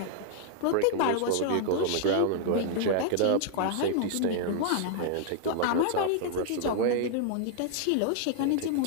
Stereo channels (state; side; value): different; both; correlation -0.01